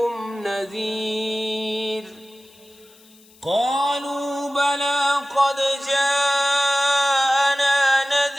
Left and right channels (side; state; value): left; noise; hiss, 27 dB below the sound